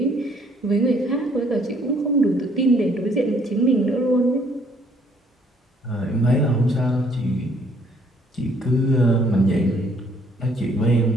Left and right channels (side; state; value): both; normal; correlation 0.64